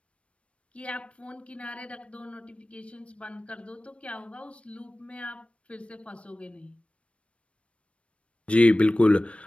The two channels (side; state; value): right; late; 0.061 ms